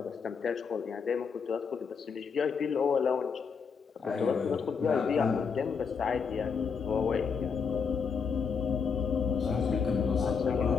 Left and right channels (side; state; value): right; quieter; 5.9 dB